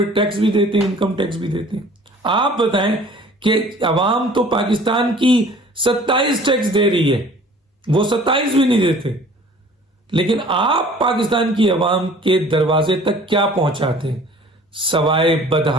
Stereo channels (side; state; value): both; normal; correlation 0.50